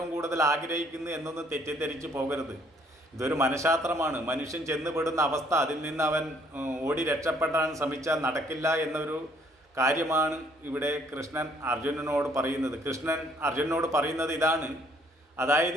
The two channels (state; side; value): normal; both; correlation 0.64